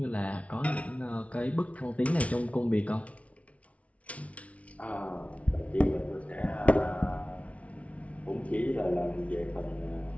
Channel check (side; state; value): right; late; 0.065 ms